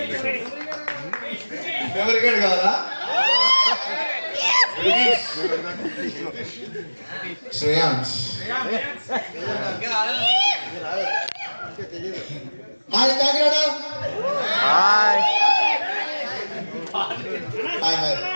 మెమరీ కార్డ్ కావాలా? Shreyansh hi Kakinada hi hi hi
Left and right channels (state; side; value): inverted; both; correlation -1.00